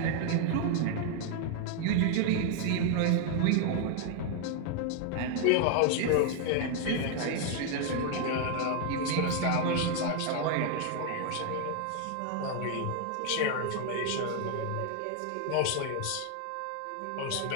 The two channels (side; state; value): both; different; correlation 0.00